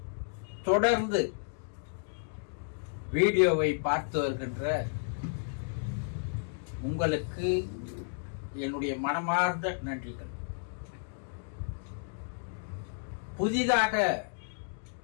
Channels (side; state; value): right; silent; digital silence